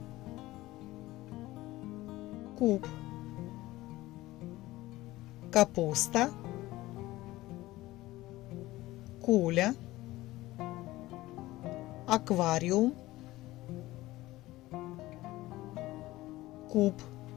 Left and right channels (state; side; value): quieter; right; 17.8 dB